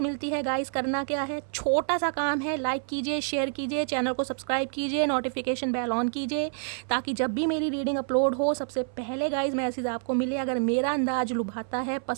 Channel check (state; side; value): silent; left; 58 dB below the other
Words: मिलती है गाइस, करना क्या है, छोटा सा काम है, लाइक कीजिए, शेयर कीजिए, चैनल को सब्सक्राइब कीजिए, नोटिफिकेशन बेल ऑन कीजिए, ताकि जब भी मेरी रीडिंग अपलोड हो सबसे पहले गाइस मैसेज आपको मिले। अगर मेरा अंदाज लुभाता है,